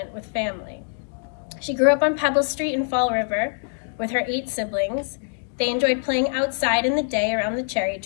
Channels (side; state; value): right; silent; digital silence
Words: with family. She grew up on Pebble Street in Fall River with her 8 siblings. They enjoyed playing outside in the day around the cherry